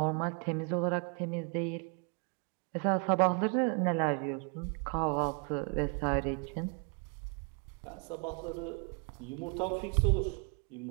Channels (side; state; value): left; quieter; 37.0 dB